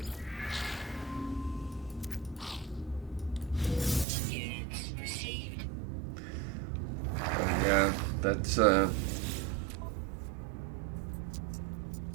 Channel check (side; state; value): left; drops out; at 4.0 s